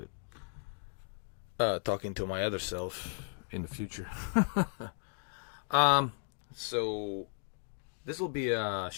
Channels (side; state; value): right; silent; 54 dB below the other